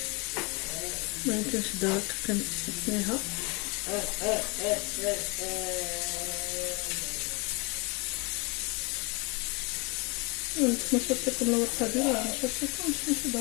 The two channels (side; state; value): right; quieter; 30.0 dB